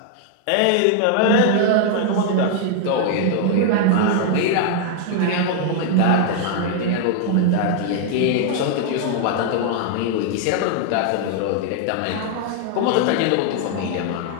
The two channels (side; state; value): both; different; correlation 0.00